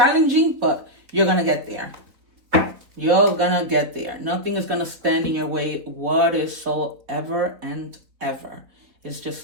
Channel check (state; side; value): late; left; 4.1 ms